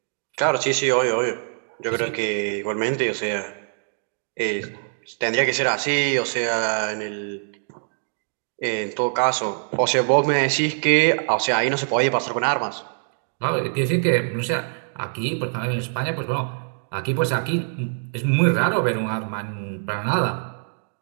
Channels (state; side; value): silent; left; digital silence